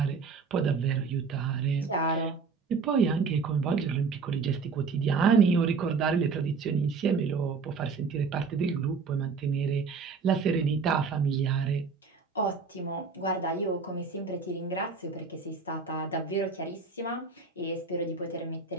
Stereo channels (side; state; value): left; quieter; 5.0 dB